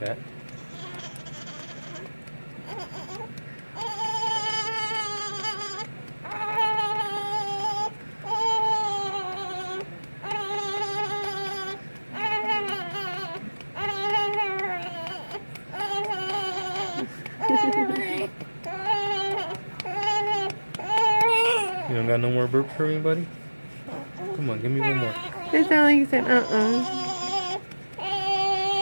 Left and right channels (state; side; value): inverted; both; correlation -1.00